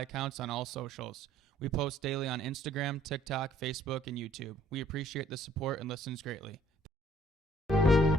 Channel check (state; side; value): normal; both; correlation 0.60